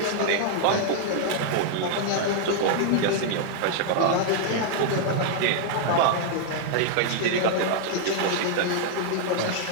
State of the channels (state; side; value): different; both; correlation -0.01